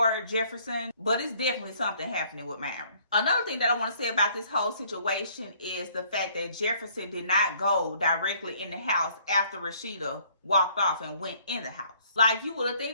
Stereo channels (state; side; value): inverted; both; correlation -0.61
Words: Jefferson, but it's definitely something happening with Myron. Another thing that I want to say about this whole situation is the fact that Jefferson did not go directly in the house after Rashida walked off and went in the house. Like, you would have